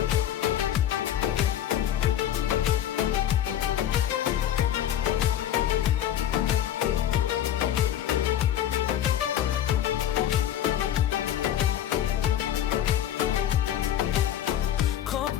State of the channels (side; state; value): right; quieter; 11.1 dB